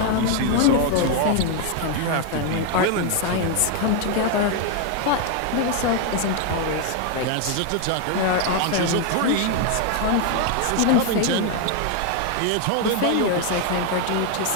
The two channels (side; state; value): both; different; correlation 0.01